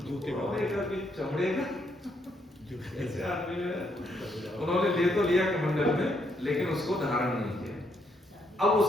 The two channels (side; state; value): both; normal; correlation 0.74